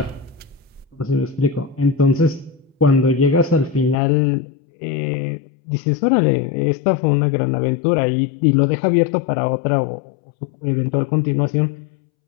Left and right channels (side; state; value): right; drops out; at 4.0 s